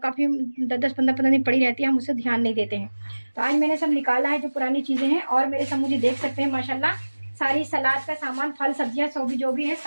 10-10 15-15 दिन पड़ी रहती है, हम उसे ध्यान नहीं देते हैं। तो आज मैंने सब निकाला है जो पुरानी चीज़ें हैं। और मेरे सम्मू जी देख सकते हैं माशाल्लाह सारी सलाद का सामान, फल सब्जियां सब जो भी है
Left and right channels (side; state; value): both; inverted; correlation -1.00